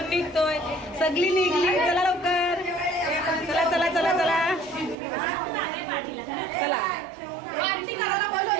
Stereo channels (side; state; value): left; drops out; at 5.0 s